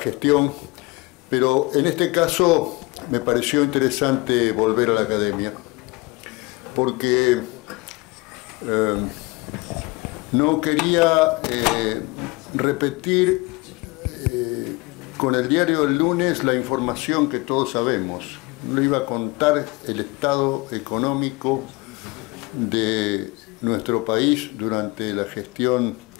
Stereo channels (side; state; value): right; quieter; 24.4 dB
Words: gestión, pero en este caso me pareció interesante volver a la academia, porque no quería repetir con el diario del lunes la información que todos sabemos. No iba a contar el estado económico de nuestro país durante la gestión